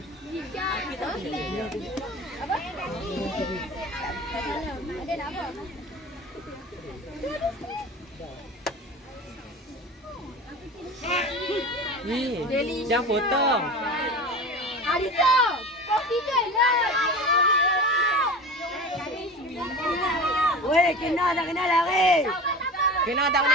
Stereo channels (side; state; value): both; normal; correlation 0.33